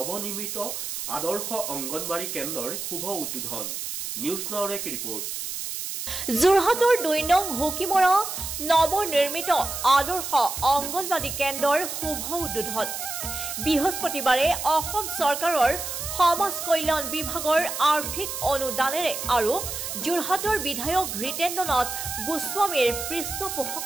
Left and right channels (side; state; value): right; noise; hiss, 5 dB below the sound